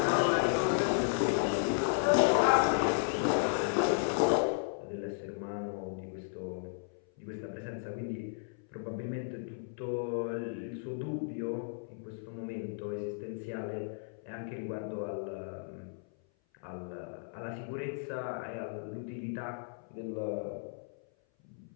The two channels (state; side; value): silent; right; 55 dB below the other